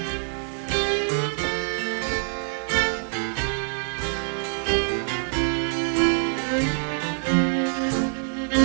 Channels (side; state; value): left; silent; 62 dB below the other